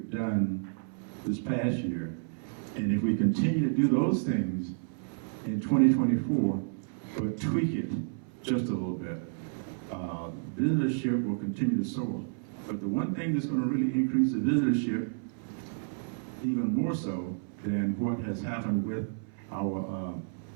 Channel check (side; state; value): left; silent; 57 dB below the other